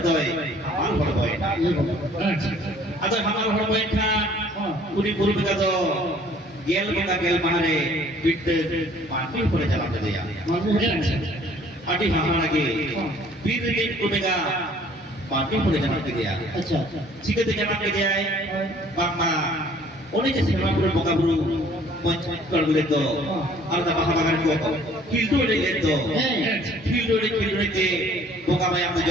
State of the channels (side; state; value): both; normal; correlation 0.56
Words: toy hamal boy atau hamal boy kan uni buru mereka tu gel mahare bit mati pun jalan jadi ya adi hamal lagi bir दिन कुनेगा party पुरे जाना के दिया अच्छा ठीक है जाना के दिया बामा ओने जैसे हम पुरे बोका बुरु पंच कर बोले तो और दा बाहा बागान को किल्डो ले ले तो किल्डो ले के बोका भाई हम